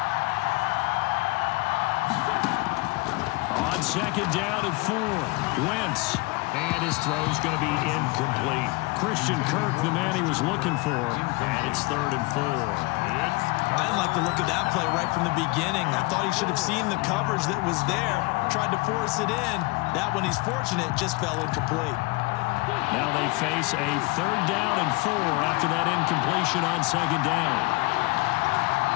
On 2nd down and 4, Wentz. And his throw's going to be incomplete. Christian Kirk, the man he was looking for. And it's 3rd and 4. I didn't like the look of that play right from the beginning. I thought he should have seen the coverage that was there, tried to force it in. That one, he's fortunate, just fell incomplete. Now they face a 3rd down and 4 after that incompletion on 2nd down.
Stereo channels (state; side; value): quieter; right; 24.7 dB